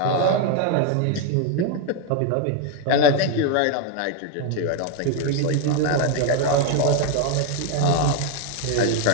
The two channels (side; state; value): both; different; correlation 0.01